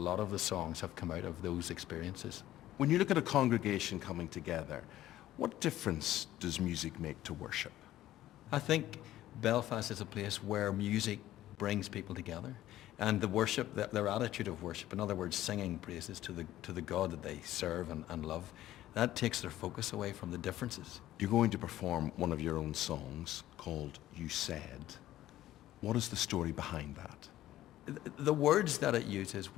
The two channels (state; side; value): quieter; right; 13.9 dB